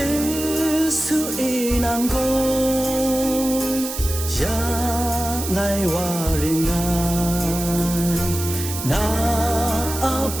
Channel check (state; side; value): noise; right; hiss, 7 dB below the sound